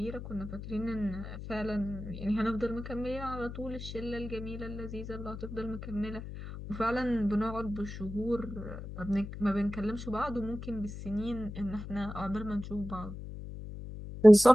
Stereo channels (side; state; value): left; noise; hum, 10 dB below the sound